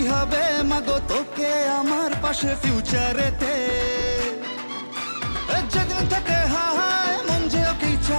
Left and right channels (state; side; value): inverted; both; correlation -1.00